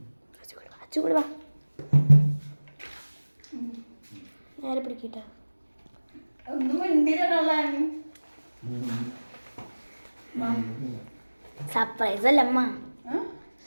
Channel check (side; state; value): both; inverted; correlation -1.00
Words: അച്ഛൻ കൂടെ വാ, നേരെ പിടിക്കട്ടെ. ഒന്നും മിണ്ടിയില്ല. സർപ്രൈസ് അല്ല അമ്മ,